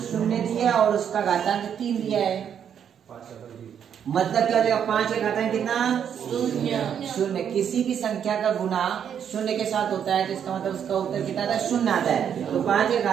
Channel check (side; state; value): left; quieter; 8.5 dB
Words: 0 दिया और उसका घातांक 3 दिया है, मतलब क्या हो जाएगा? 5 का घातांक कितना? 0। किसी भी संख्या का गुना 0 के साथ होता है तो इसका मतलब उसका उत्तर कितना आता है? 0 आता है। तो 5 का